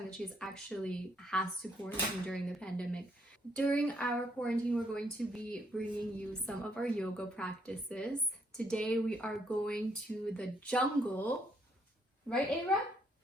that she's actually has to quarantine during the pandemic. During our quarantine, we're going to be bringing you some of our yoga practices. Today we are going to the jungle. Right, Ava?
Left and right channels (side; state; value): both; normal; correlation 0.70